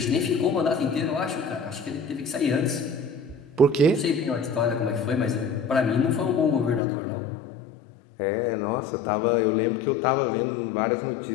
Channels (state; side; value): drops out; right; at 6.8 s